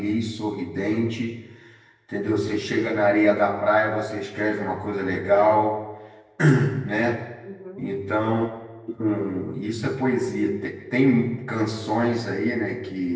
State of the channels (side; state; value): both; identical; correlation 1.00